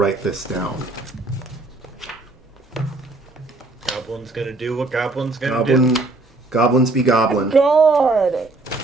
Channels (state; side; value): quieter; left; 3.2 dB